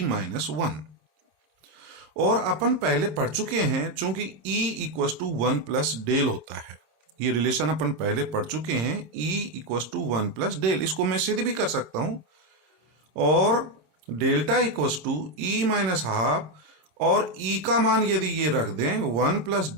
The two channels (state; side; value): late; left; 26 ms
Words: माइनस वन। और अपन पहले पढ़ चुके हैं, चूंकि E equals to one plus del होता है, ये रिलेशन अपन पहले पढ़ चुके हैं, E equals to one plus del, इसको मैं सीधे भी कर सकता हूं, और delta equals to E minus half, और ई का मान यदि ये रख दें one plus